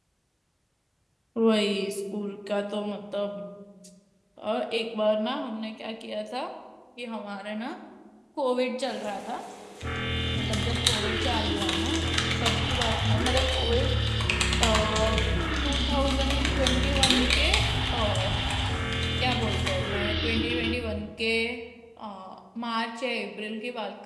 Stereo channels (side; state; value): both; identical; correlation 1.00